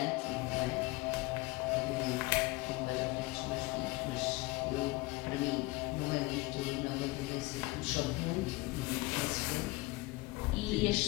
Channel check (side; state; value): right; quieter; 21.9 dB